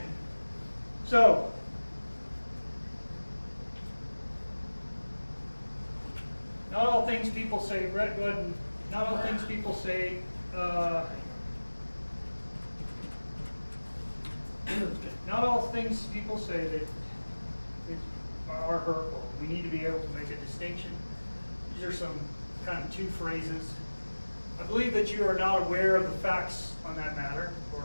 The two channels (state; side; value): inverted; both; correlation -1.00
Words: so not all things people say, Brett, go ahead and, not all things people say, not all things people say that are hurtful. We need to be able to make a distinction. These are some kind of two phrases. I believe that you are not aware of the facts on that matter,